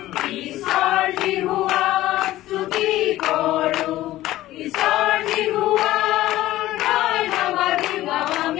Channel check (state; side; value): quieter; right; 15.5 dB